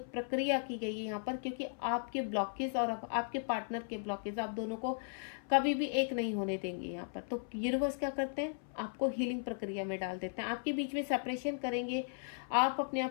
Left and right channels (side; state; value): right; silent; 53 dB below the other